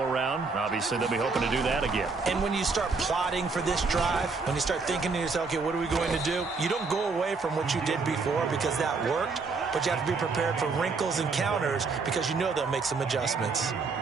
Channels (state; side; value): quieter; left; 4.4 dB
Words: Obviously, they'll be hoping to do that again. And when you start plotting for this drive, when you start thinking to yourself, okay, what are we going to do? You don't go away from what you did before because that worked, but you have to be prepared for wrinkles and counters because you know they'll make some adjustments.